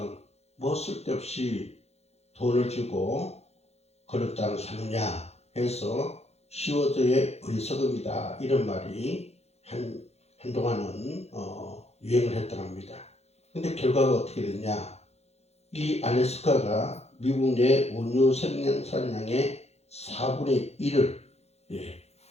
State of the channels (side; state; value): right; late; 0.31 ms